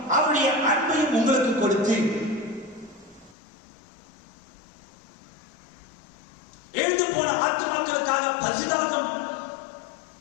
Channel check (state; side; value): drops out; right; at 3.4 s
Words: அவருடைய அன்பையும் உங்களுக்கு கொடுத்து எழுந்து போன ஆத்துமாக்களுக்காக பரிதாபம்